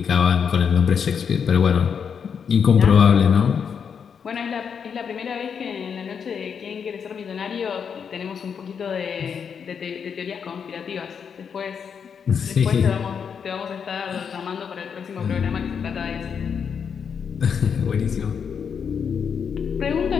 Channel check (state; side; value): quieter; right; 6.9 dB